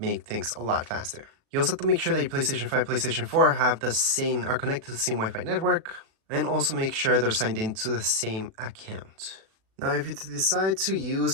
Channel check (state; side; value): late; left; 37 ms